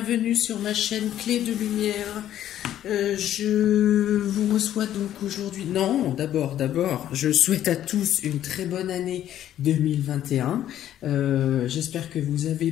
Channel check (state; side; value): quieter; right; 11.6 dB